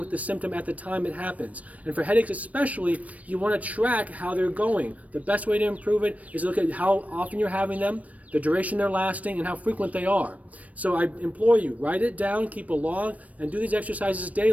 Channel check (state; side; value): late; left; 0.068 ms